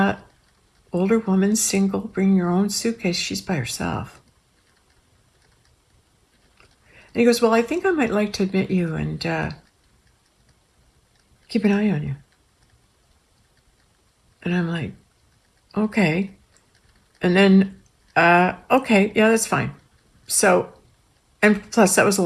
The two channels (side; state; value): both; identical; correlation 1.00